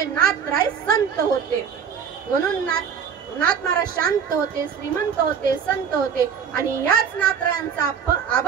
नाथराय संत होते. म्हणून नाथ महाराज शांत होते, श्रीमंत होते, संत होते. आणि याच नाथरायांचा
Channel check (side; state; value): left; quieter; 7.1 dB